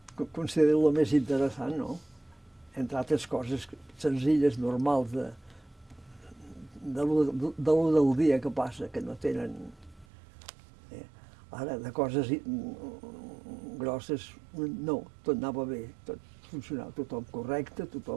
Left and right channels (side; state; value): left; drops out; at 10.1 s